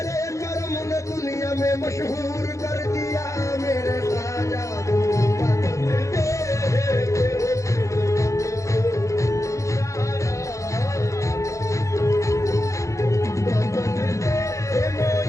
कर्म ने दुनिया में मशहूर कर दिया। मेरे ख्वाजा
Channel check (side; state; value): right; late; 0.15 ms